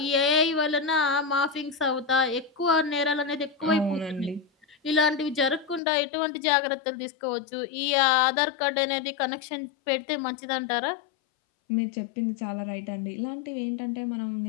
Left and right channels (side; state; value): right; drops out; at 5.8 s